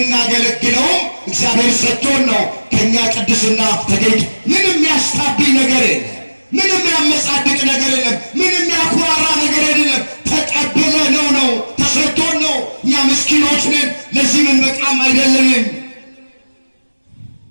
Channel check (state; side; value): inverted; both; correlation -1.00